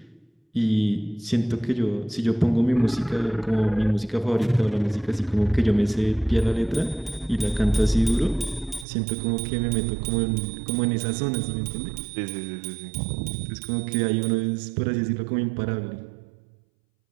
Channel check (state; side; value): drops out; left; at 8.8 s